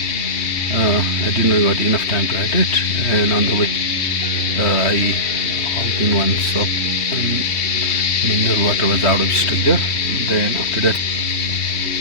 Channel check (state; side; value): late; right; 3.1 ms